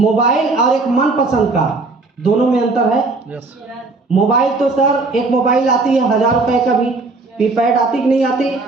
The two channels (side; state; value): left; quieter; 3.6 dB